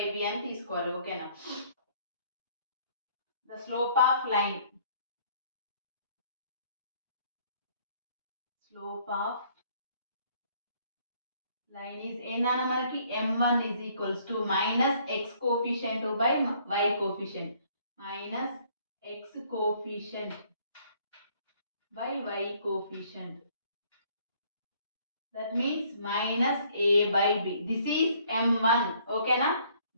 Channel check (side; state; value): both; inverted; correlation -0.62